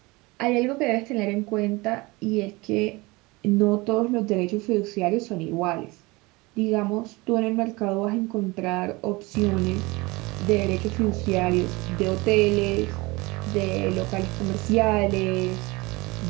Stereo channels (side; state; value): left; quieter; 23.6 dB